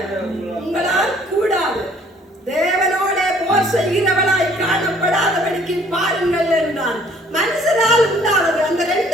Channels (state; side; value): normal; both; correlation 0.58